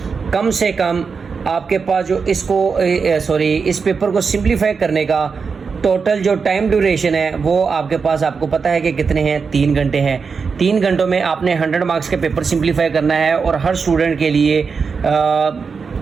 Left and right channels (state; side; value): quieter; left; 5.4 dB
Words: कम से कम आपके पास जो इस पेपर को सिंप्लीफाई करने का टोटल जो टाइम ड्यूरेशन है वो आपके पास, आपको पता है कि कितने हैं, 3 घंटे हैं। 3 घंटों में आपने 100 मार्क्स के पेपर सिंप्लीफाई करना है और हर स्टूडेंट के लिए